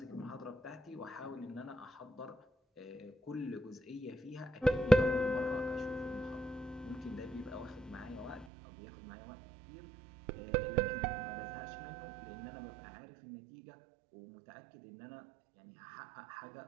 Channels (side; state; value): left; drops out; at 8.5 s